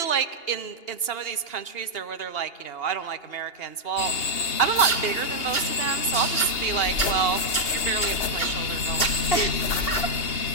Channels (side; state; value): right; late; 2.8 ms